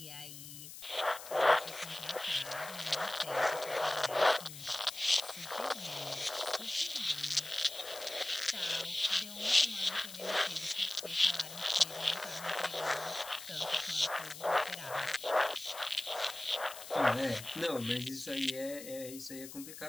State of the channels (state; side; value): noise; left; hiss, 13 dB below the sound